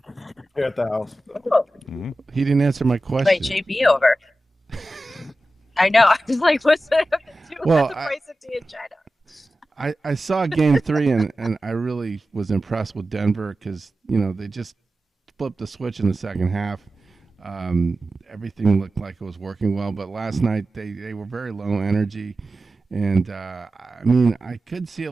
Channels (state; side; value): normal; both; correlation 0.94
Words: here at the house. He didn't answer my question. Wait, JB over. I know. I was like, what's that have to do with the price of tea in China? I saw Game 3, and I really was impressed with Denver because, they just flipped the switch in the second half. Everything looked like it was working well, but last night they were very low energy. And, I could see a